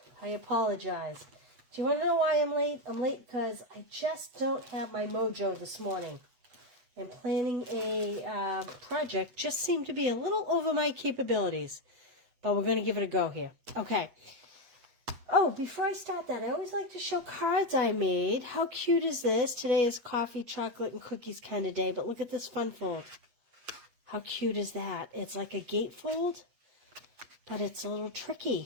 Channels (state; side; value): late; left; 8.2 ms